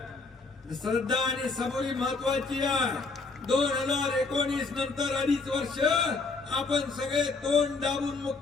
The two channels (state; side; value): quieter; right; 4.0 dB